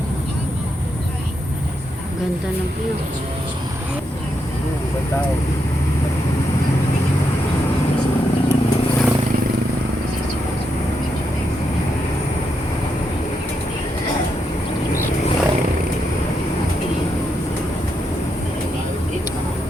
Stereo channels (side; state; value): both; normal; correlation 0.82